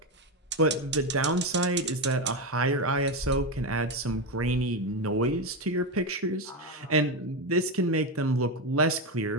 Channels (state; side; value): normal; both; correlation 0.12